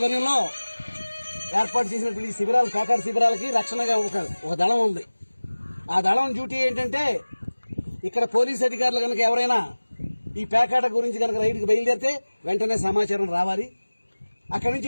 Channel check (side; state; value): both; inverted; correlation -1.00